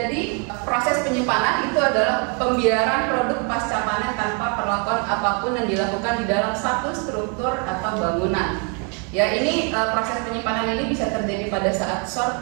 proses penyimpanan itu adalah pembiaran produk pasca panen tanpa perlakuan apapun yang dilakukan di dalam satu struktur atau bangunan. Ya, ini proses penyimpanan ini bisa terjadi pada saat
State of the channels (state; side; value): quieter; left; 36.8 dB